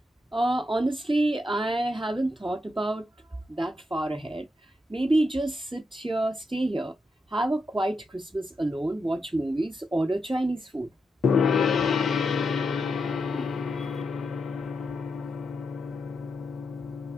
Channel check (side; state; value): both; normal; correlation 0.85